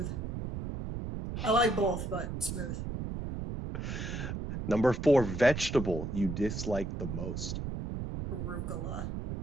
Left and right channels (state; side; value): noise; right; rumble, 4 dB below the sound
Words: I like both, but smooth. Number 4, vegetable you dislike the most? Arugula.